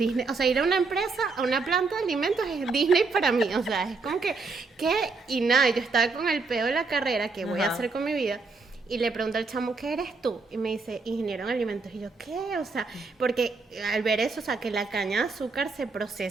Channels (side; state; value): left; quieter; 4.1 dB